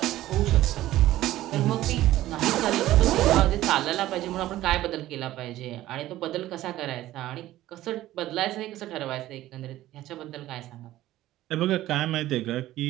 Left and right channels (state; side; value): quieter; left; 15.0 dB